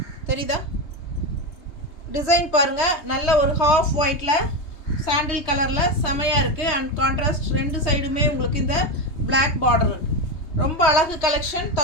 தெரியுதா? டிசைன் பாருங்கள், நல்ல ஒரு ஹாஃப் ஒயிட்டில் சாண்டில் கலரில் செமையாக இருக்குது. அண்ட் கான்ட்ராஸ்ட் ரெண்டு சைடுமே உங்களுக்கு இந்த பிளாக் பார்டர் இருக்குது. ரொம்ப அழகு கலெக்ஷன்.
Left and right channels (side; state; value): right; late; 3.3 ms